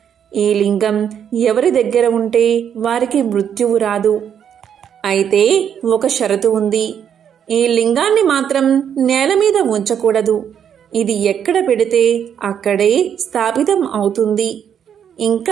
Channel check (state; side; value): quieter; left; 8.6 dB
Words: ఈ లింగం ఎవరి దగ్గర ఉంటే వారికి మృత్యువు రాదు. అయితే ఒక షరతు ఉంది. ఈ లింగాన్ని మాత్రం నేల మీద ఉంచకూడదు. ఇది ఎక్కడ పెడితే అక్కడే స్థాపితం అవుతుంది.